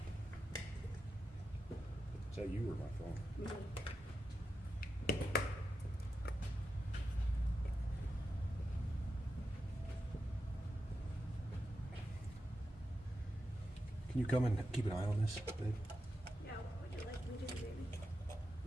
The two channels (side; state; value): both; normal; correlation 0.89